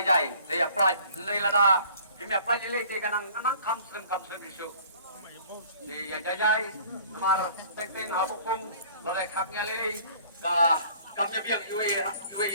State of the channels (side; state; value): both; inverted; correlation -0.52